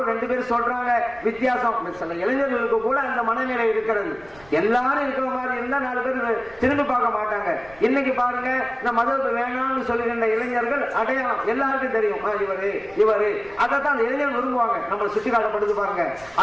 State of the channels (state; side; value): noise; right; rumble, 25 dB below the sound